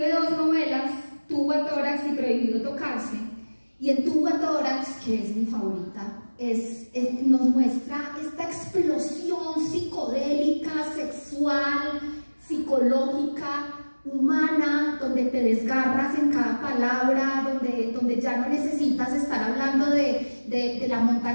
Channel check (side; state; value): both; inverted; correlation -1.00